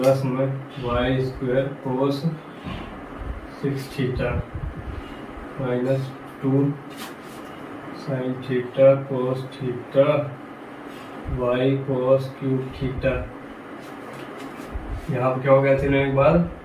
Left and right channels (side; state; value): both; identical; correlation 1.00